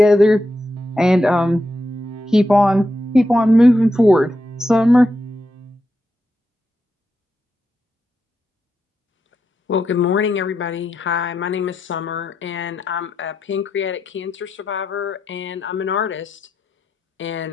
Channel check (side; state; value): both; normal; correlation 0.85